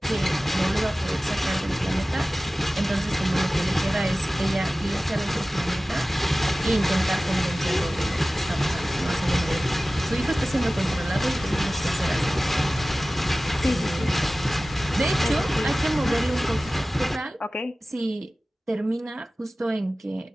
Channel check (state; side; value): normal; both; correlation 0.97